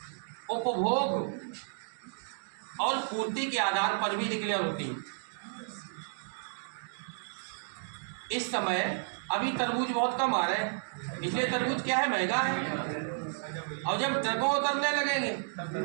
उपभोग और पूर्ति के आधार पर भी डिक्लेयर होती है। इस समय अभी तरबूज बहुत कम आ रहे हैं, इसलिए तरबूज क्या है, महंगा है। और जब ट्रकों उतरने लगेंगे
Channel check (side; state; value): left; silent; digital silence